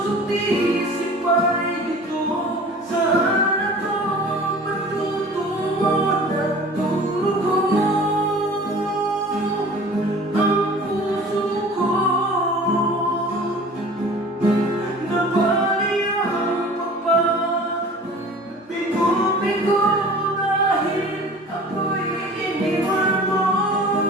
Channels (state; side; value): normal; both; correlation 0.43